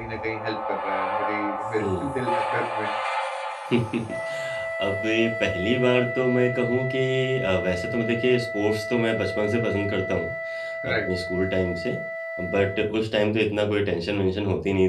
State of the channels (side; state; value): both; identical; correlation 1.00